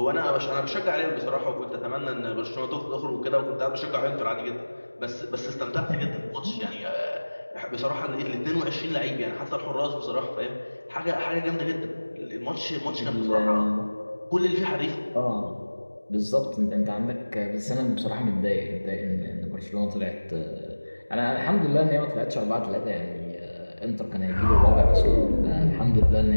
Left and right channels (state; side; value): inverted; both; correlation -1.00